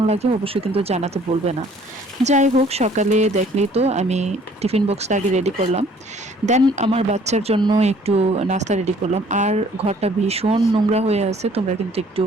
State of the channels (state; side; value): normal; both; correlation 0.57